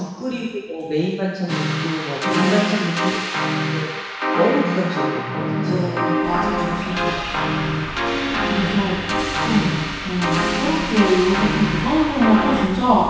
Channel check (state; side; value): identical; both; correlation 1.00